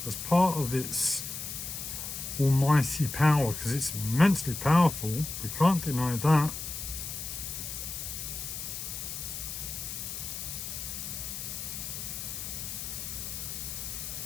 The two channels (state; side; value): noise; left; hiss, 6 dB below the sound